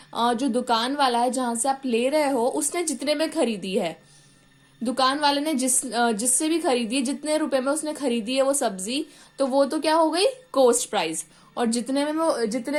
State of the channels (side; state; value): both; identical; correlation 1.00